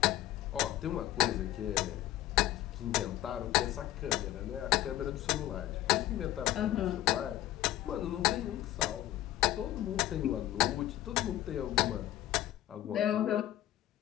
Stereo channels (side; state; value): right; quieter; 14.0 dB